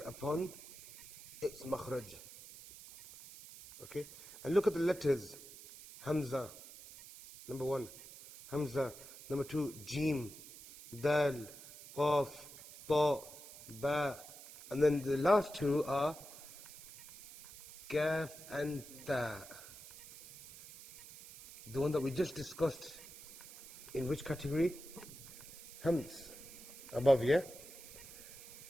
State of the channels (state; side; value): noise; right; hiss, 16 dB below the sound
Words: its makhraj. Okay? And look at the letters. Hamza, number 1. Hamza, number 2. Jim, Dal, Qaf, Ta, Ba. And then the last 2 are Kaf and Ta. The one that we just discussed. In which category? Hams. Above, yeah?